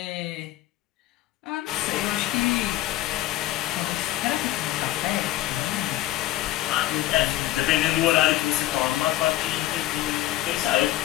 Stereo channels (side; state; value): right; quieter; 15.3 dB